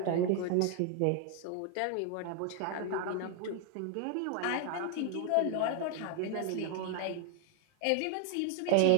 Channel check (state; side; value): different; both; correlation 0.00